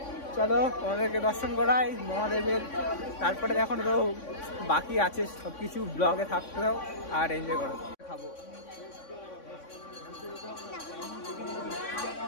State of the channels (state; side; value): late; right; 3.6 ms